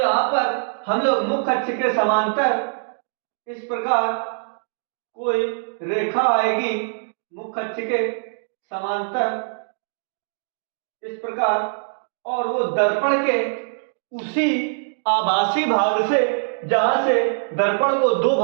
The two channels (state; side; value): silent; left; digital silence